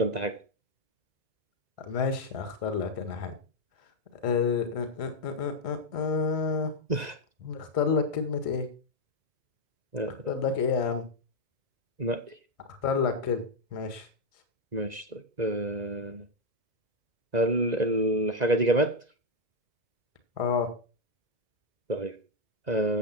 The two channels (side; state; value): left; late; 1.6 ms